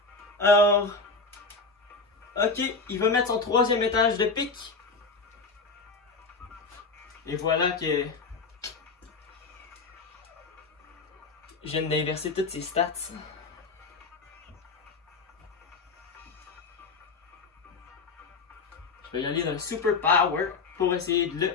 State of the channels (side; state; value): right; quieter; 4.1 dB